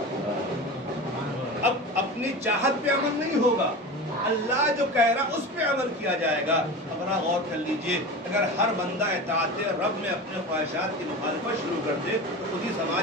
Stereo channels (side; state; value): both; normal; correlation 0.30